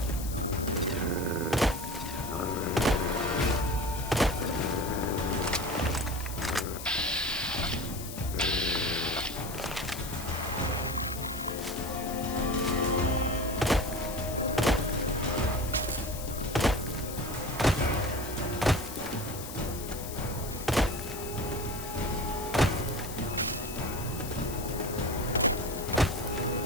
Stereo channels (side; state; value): left; noise; hiss, 10 dB below the sound